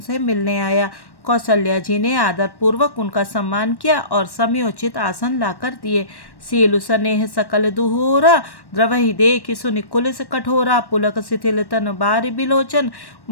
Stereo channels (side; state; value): right; late; 1.1 ms